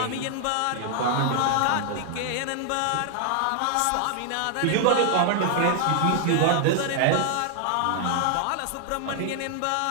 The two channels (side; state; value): both; different; correlation 0.00